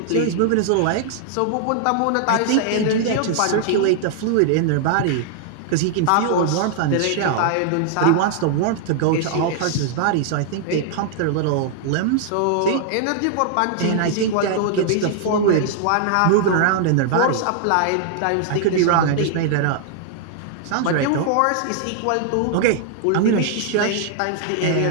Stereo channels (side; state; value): both; different; correlation -0.01